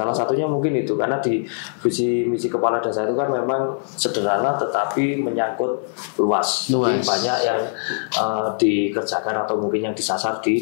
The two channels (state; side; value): silent; right; digital silence